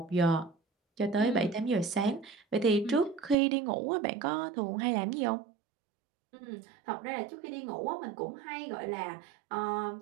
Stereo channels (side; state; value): left; drops out; at 3.4 s